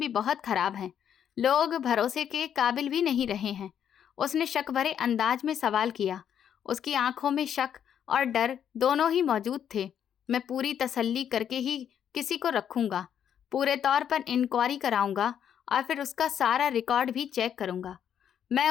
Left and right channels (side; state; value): right; quieter; 9.0 dB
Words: बहुत खराब हैं। लोग भरोसे के काबिल भी नहीं रहे हैं। उसने शक भरे अंदाज में सवाल किया। उसकी आंखों में शक और डर दोनों ही मौजूद थे। मैं पूरी तसल्ली करके ही किसी को रखूंगा। पूरे तौर पर इंक्वायरी कराऊंगा और फिर उसका सारा रिकॉर्ड भी चेक करूंगा। मैं